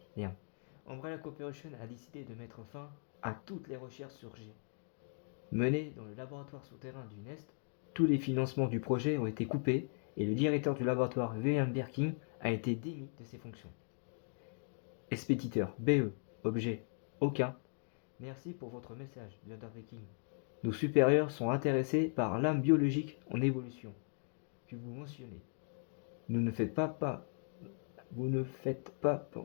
Merde. Umbrella Corporation a décidé de mettre fin à toutes les recherches sur G. Menées dans le laboratoire souterrain du Nest, tous les financements du projet ont été coupés et le directeur du laboratoire, William Birkin, a été démis de ses fonctions. Expéditeur, BE. Objet. Aucun. Merci pour votre message, Leader Viking. Nos supérieurs sont intéressés par l'âme biologique en évolution que vous mentionnez. Vous ne faites pas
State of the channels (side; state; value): right; silent; 52 dB below the other